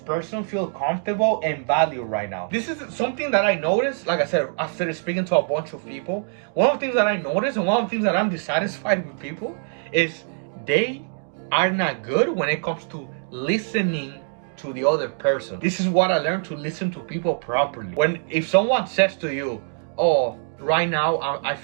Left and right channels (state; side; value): silent; left; digital silence